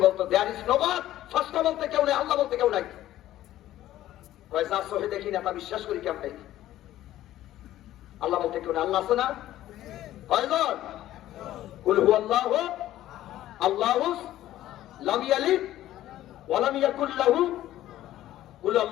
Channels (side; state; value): right; quieter; 13.8 dB